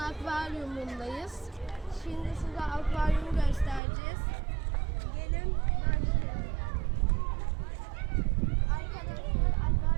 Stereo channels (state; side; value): drops out; left; at 3.8 s